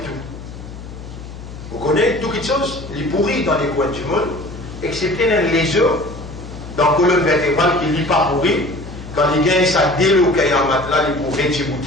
tout. Vous connaissez toutes les choses, les pourris dans les coins du monde, excepté les œufs, dans la colonne vertébrale qui n'est pas pourri, quand les gars ça déloqué en matelas, ils pour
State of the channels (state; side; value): noise; left; hum, 13 dB below the sound